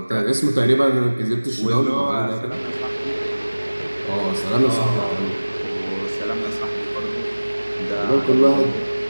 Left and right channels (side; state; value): both; inverted; correlation -1.00